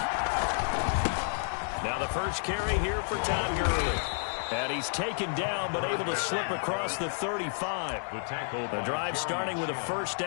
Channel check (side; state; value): right; silent; digital silence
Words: First carry here for Todd Gurley. And he's taken down but able to slip across the 35. The drive starting with a first